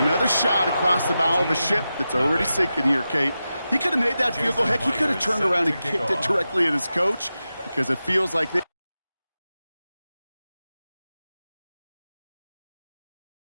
another shot across the bow of a ship that's already sinking here, Kate. He could have made that field goal. Heck, he could have turned around and kicked it directly at his coach because it feels like they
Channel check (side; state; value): both; inverted; correlation -0.92